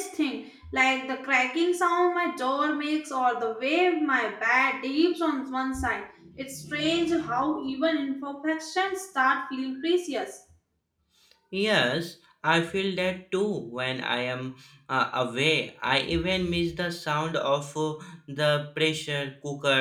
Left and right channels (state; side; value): identical; both; correlation 1.00